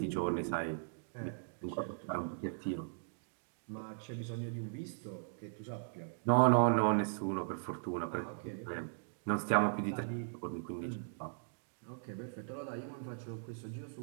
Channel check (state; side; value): silent; left; digital silence